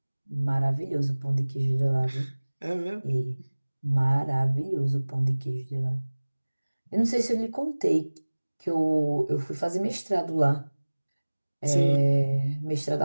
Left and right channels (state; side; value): inverted; both; correlation -1.00